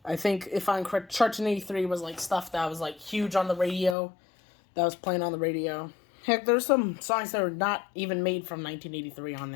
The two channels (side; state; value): right; drops out; at 4.0 s